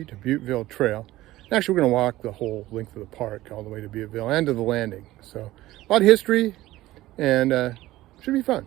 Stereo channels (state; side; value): quieter; left; 16.5 dB